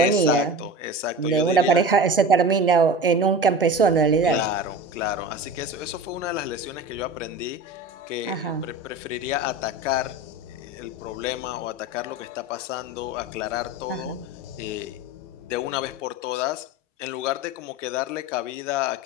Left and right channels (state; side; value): normal; both; correlation 0.32